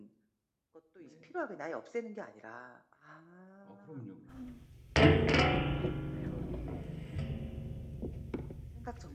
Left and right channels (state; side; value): identical; both; correlation 1.00